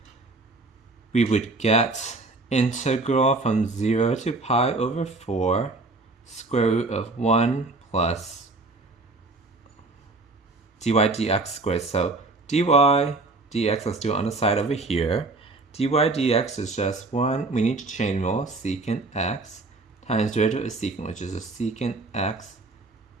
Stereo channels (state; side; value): quieter; left; 3.3 dB